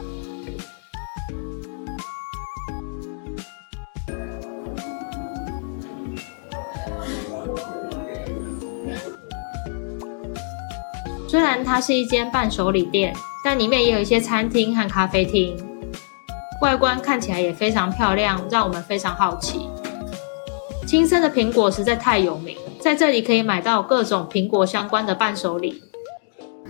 苹果加蜂蜜，变成好吃的咖喱。像这个是苹果酱油。虽然它是一间伴手礼店，但里面也有一些餐厅和咖啡厅。外观看起来也非常漂亮，让我们非常好奇。青森的苹果实在太有名，在这里可以买到各种苹果相关的伴手礼，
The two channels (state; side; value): silent; right; digital silence